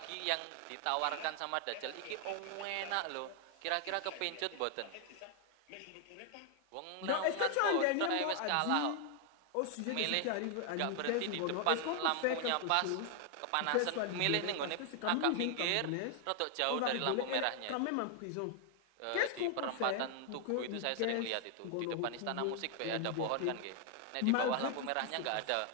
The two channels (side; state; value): both; different; correlation 0.00